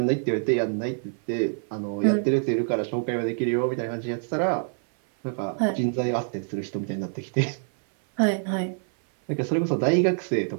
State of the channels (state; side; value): silent; left; 56 dB below the other